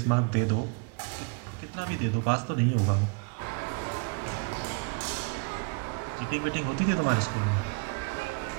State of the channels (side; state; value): left; quieter; 31.8 dB